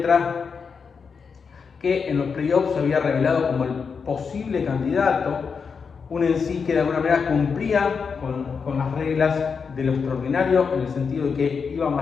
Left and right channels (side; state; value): right; quieter; 5.7 dB